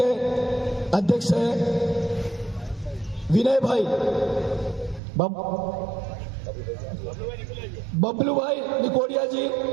अध्यक्ष हैं विनय भाई, बबलू भाई निकोडिया जी,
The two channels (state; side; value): drops out; left; at 5.0 s